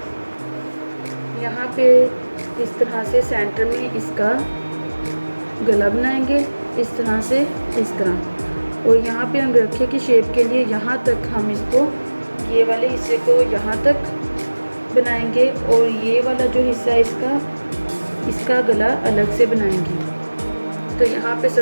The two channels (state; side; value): inverted; both; correlation -1.00